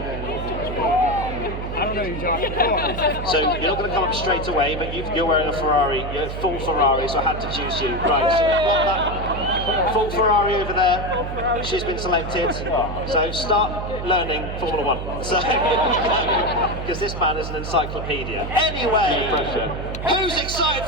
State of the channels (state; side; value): noise; right; hum, 6 dB below the sound